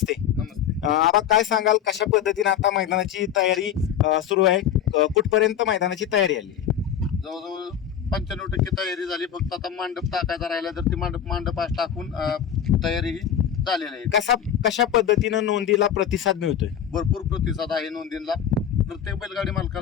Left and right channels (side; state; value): right; quieter; 9.3 dB